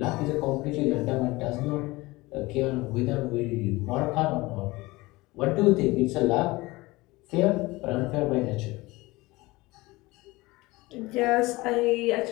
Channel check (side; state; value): right; quieter; 21.3 dB